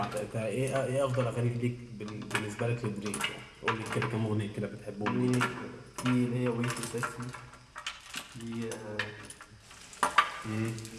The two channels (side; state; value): both; identical; correlation 1.00